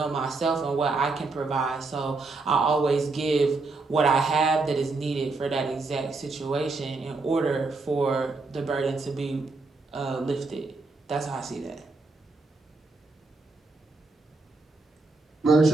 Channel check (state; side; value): quieter; left; 3.7 dB